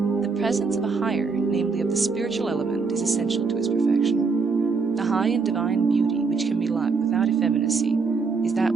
The presence of a higher, namely of the spiritual element, is essential to its perfection. The high and divine beauty which can be loved without effeminacy is that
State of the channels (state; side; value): quieter; left; 4.7 dB